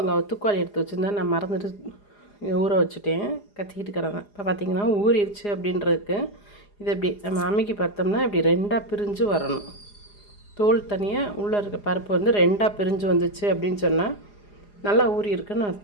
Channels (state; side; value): late; right; 4.9 ms